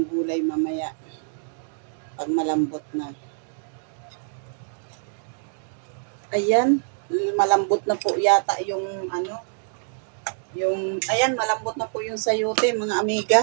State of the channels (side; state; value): left; silent; digital silence